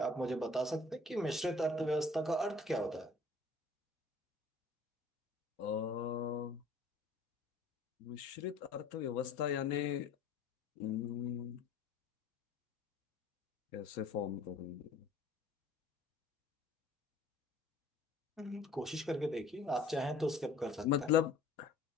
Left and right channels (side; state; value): right; quieter; 3.1 dB